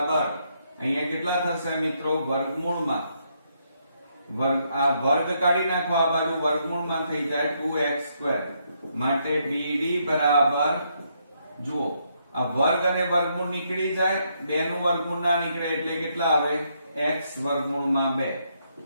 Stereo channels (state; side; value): inverted; both; correlation -0.75